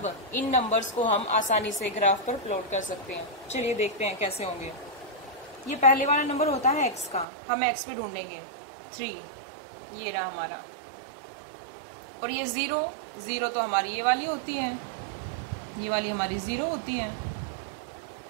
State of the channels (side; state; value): left; drops out; at 7.2 s